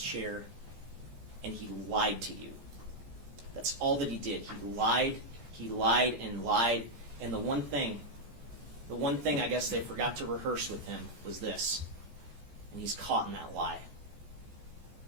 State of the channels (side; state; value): left; late; 14 ms